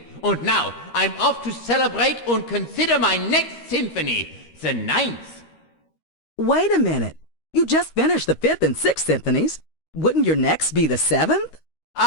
And now, I'm off to celebrate and consider my next symphony, the ninth. Wait a minute. You just finished the fifth and sixth symphonies. Wouldn't your next be the seventh?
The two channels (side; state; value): right; late; 13 ms